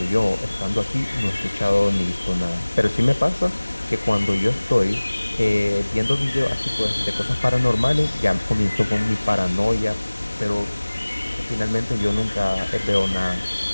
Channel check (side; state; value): both; inverted; correlation -1.00